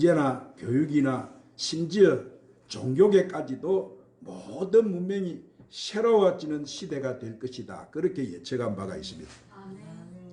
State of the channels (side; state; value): both; identical; correlation 1.00